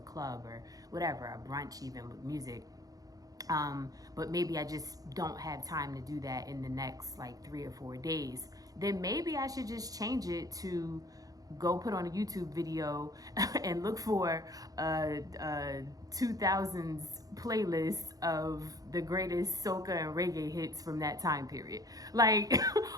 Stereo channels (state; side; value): late; left; 0.18 ms